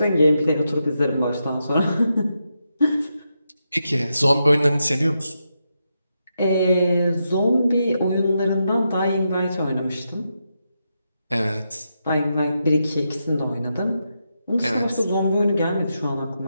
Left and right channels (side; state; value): both; inverted; correlation -0.85